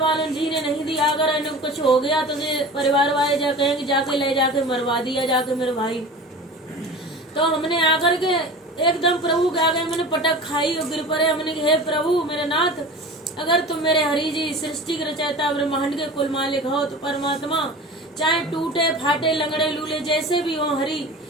वालों जी ने नहीं दिया, अगर इन्हें कुछ हो गया तो परिवार वाले जा कहेंगे जाके ले जाके मरवा दिया जाके मेरे भाई। तो हमने आकर के एकदम प्रभु के आगे मैंने पटक खाई और गिर पड़े। हमने कहा, हे प्रभु मेरे नाथ, अगर तुम मेरे हरि जी सृष्टि के रचयिता ब्रह्मांड के कुल मालिक हो तो परमात्मा चाहे टूटे फाटे लंगड़े लूले जैसे भी हो हरि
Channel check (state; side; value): normal; both; correlation 0.36